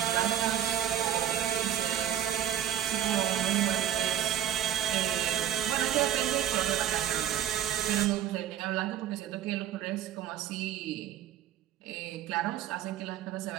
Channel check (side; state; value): left; quieter; 10.9 dB